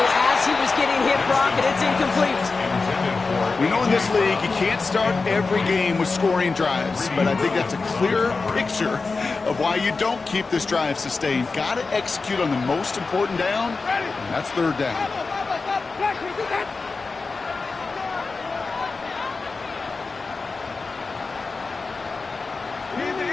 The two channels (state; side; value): quieter; right; 4.1 dB